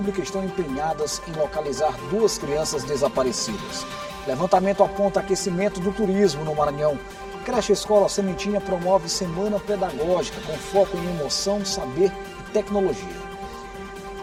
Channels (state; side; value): noise; right; hum, 28 dB below the sound